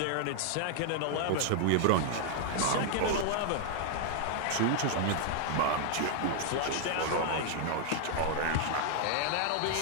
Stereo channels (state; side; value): different; both; correlation 0.00